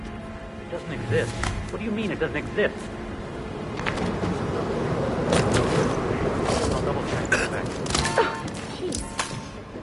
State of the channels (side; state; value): both; identical; correlation 1.00